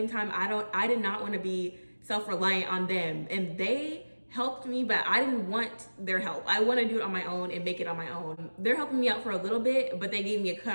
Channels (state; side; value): inverted; both; correlation -1.00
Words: time, I did not want to be self-reliant on them. And they helped me, but I didn't want their help. I want to do it on my own and make it on my own. They're helping me out for a little bit, but they gave me a